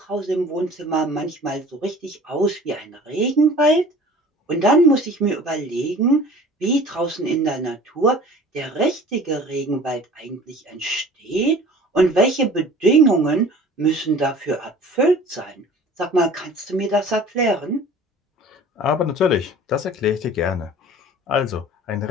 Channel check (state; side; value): normal; both; correlation 0.45